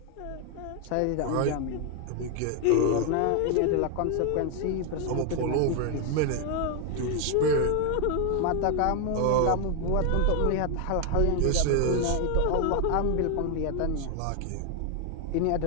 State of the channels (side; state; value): both; different; correlation 0.01